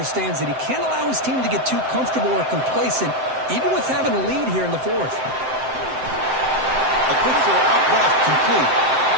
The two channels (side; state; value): left; late; 7.7 ms